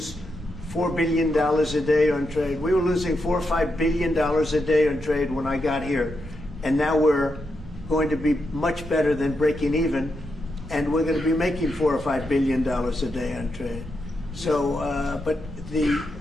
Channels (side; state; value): right; noise; rumble, 14 dB below the sound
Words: $4 billion a day on trade. We were losing $4 or $5 billion a day on trade when I got here, and now we're going to be much better than breaking even, and we're going to be making $4 or $5 billion a day on trade. So, but